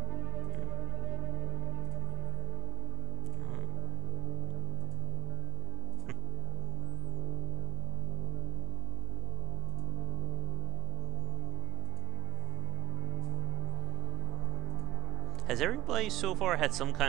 Has everybody so far had some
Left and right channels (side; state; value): left; quieter; 16.3 dB